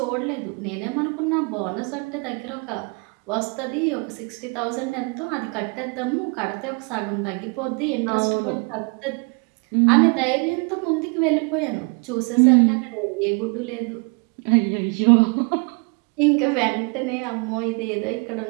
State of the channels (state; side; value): quieter; left; 34.2 dB